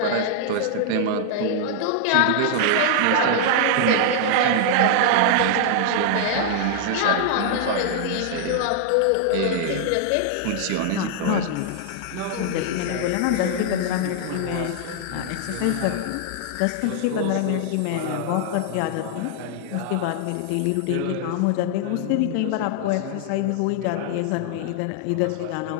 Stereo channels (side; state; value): both; different; correlation 0.00